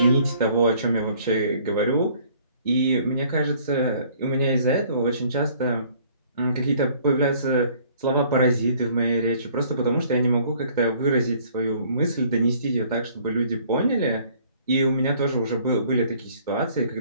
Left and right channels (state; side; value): inverted; both; correlation -0.58